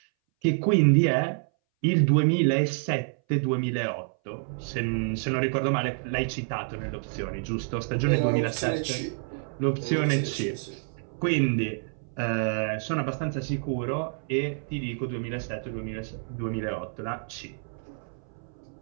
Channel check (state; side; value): silent; left; 59 dB below the other